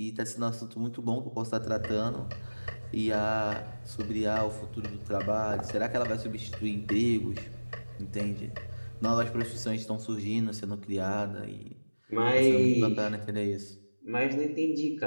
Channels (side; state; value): both; inverted; correlation -1.00